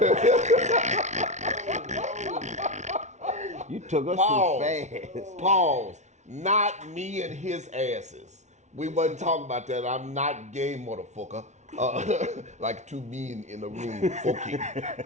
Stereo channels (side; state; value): left; late; 0.33 ms